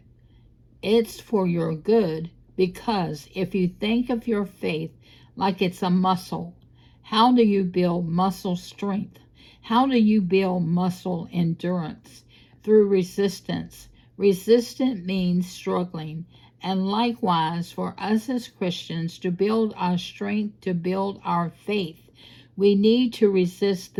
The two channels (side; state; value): both; identical; correlation 1.00